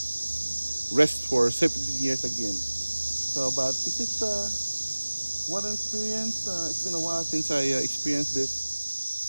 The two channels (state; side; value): inverted; both; correlation -1.00